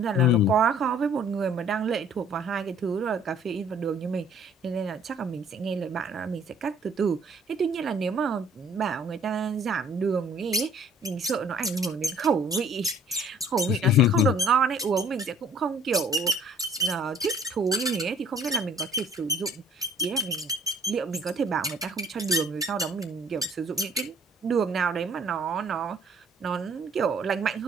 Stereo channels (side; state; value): both; normal; correlation 0.56